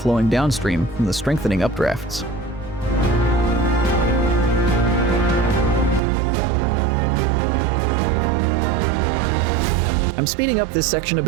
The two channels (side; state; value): left; drops out; at 6.0 s